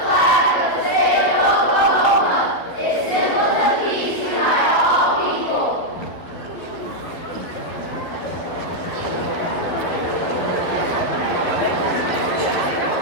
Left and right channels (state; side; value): late; right; 11 ms